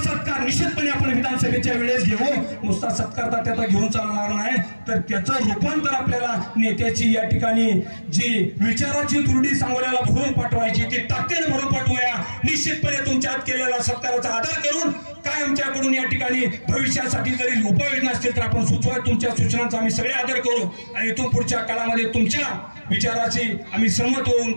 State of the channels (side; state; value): both; inverted; correlation -1.00